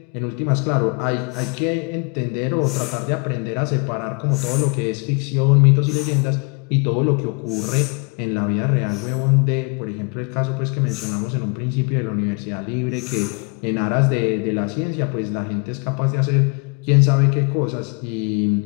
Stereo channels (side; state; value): right; quieter; 33.1 dB